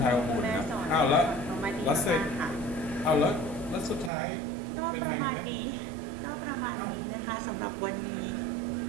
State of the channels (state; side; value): drops out; left; at 4.1 s